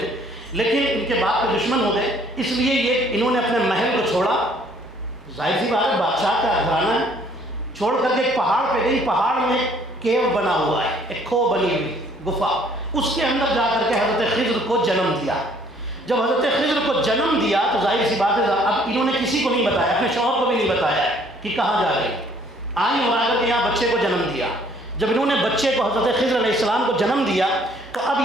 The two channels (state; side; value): normal; both; correlation 0.60